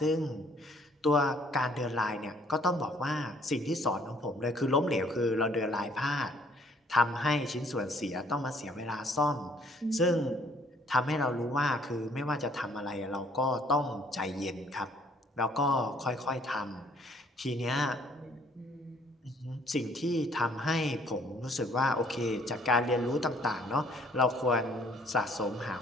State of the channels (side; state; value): both; normal; correlation 0.61